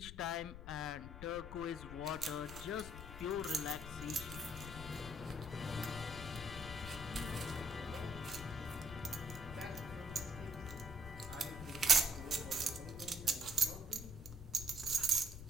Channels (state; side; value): noise; left; rumble, 10 dB below the sound